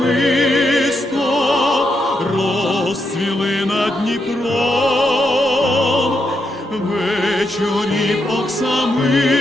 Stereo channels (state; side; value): normal; both; correlation 0.82